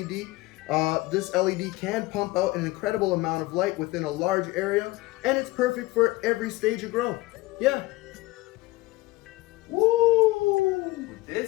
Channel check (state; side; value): quieter; right; 20.0 dB